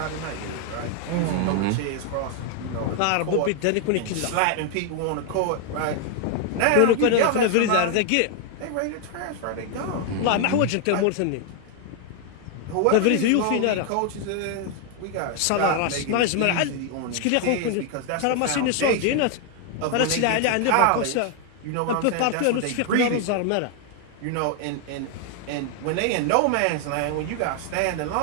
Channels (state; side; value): different; both; correlation 0.00